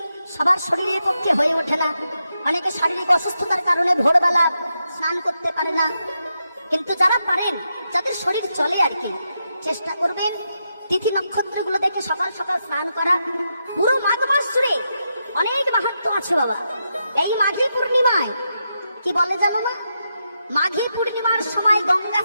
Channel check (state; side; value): inverted; both; correlation -0.84